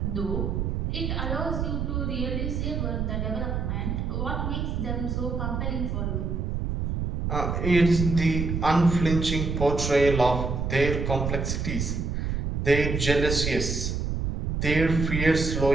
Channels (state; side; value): noise; right; rumble, 1 dB below the sound